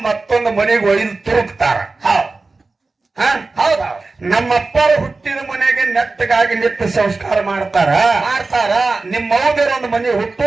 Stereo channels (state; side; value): quieter; left; 3.6 dB